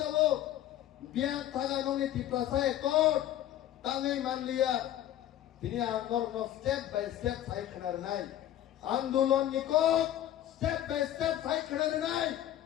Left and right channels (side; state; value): right; quieter; 12.4 dB